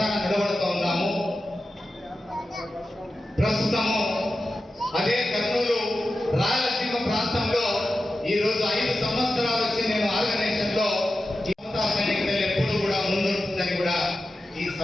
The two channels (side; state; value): both; normal; correlation 0.92